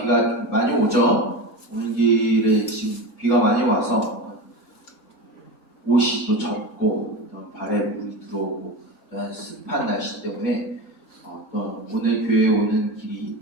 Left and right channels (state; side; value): normal; both; correlation 0.25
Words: 비가 많이 오죠. 오는 길에 지금 비가 많이 와서 옷이 또 젖고 발에 물이 들어오고 습한 날씨 때문에 또 오늘 교회에 오는 길이